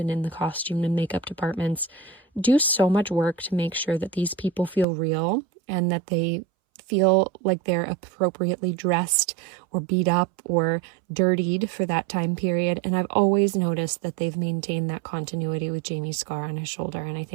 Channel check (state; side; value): drops out; left; at 4.9 s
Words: in the costume and makeup departments do so much work to make sure that these people feel real and that they feel like they're appropriately dressed or beat up or dirtied for that time period. And I've always noticed that they've maintained that continuity with Jamie's scar on his shoulder, and I